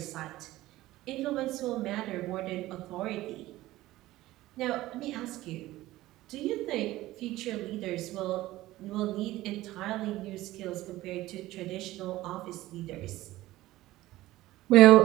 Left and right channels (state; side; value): quieter; left; 16.7 dB